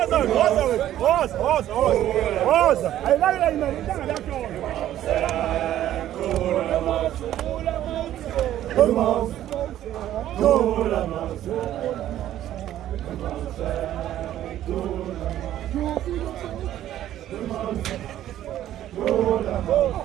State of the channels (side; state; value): left; quieter; 12.4 dB